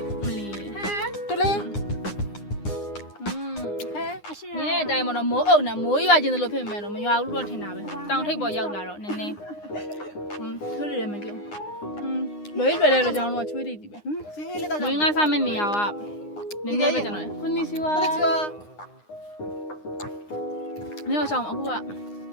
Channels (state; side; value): late; right; 9.8 ms